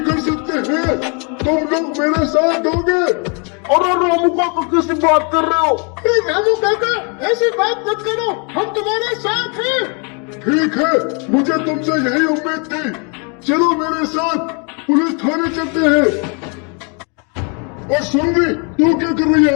कर सकते हैं, तुम लोग मेरे साथ दोगे। और रामू काका किसी बात कर रहे हो? रामू काका ऐसी बात मत करो, हम तुम्हारे साथ हैं। ठीक है, मुझे तुमसे यही उम्मीद थी। चलो मेरे साथ पुलिस थाने चलते हैं। और सुन भी, तू क्या कर रही है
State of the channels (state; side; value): quieter; right; 36.0 dB